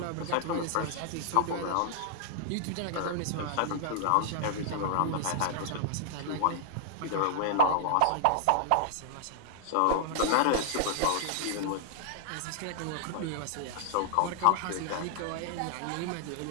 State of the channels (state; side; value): different; both; correlation -0.01